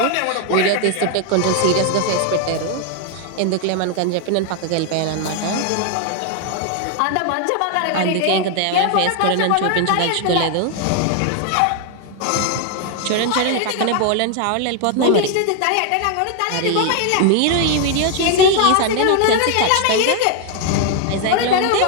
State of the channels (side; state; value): both; different; correlation 0.00